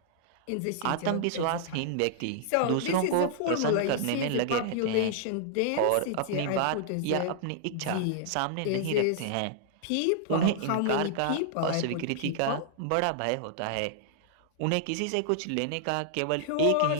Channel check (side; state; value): both; different; correlation -0.01